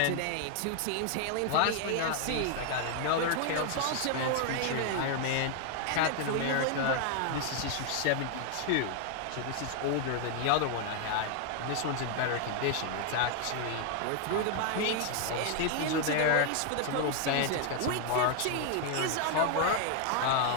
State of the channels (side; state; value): both; different; correlation 0.00